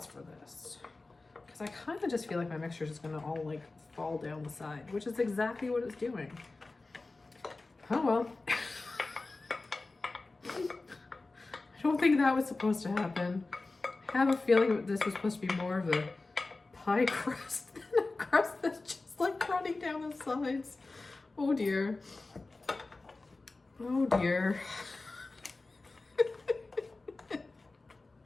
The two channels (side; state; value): right; quieter; 3.4 dB